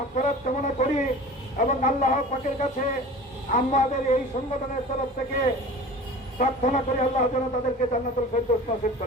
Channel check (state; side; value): normal; both; correlation 0.39